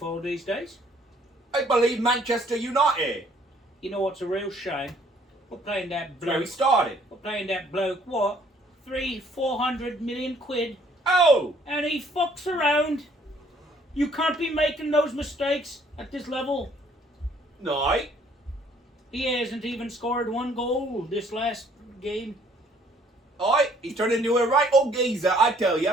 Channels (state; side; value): normal; both; correlation 0.62